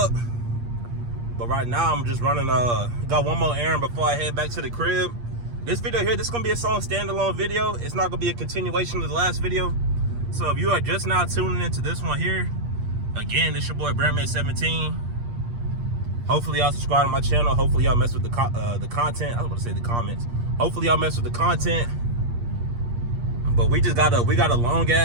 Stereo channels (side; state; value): left; late; 8.5 ms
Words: But right now, I'm just running, got one more errand before I head back to the crib. This video here, this is gonna be its own standalone video. It's not gonna be a continuation of the last video. So if you are just now tuning into this one here, again, this your boy Bearman17. Hopefully y'all subscribe to my channel. Hopefully y'all mess with the content. I was about to say the comments. Hopefully y'all mess with the content. But we got a long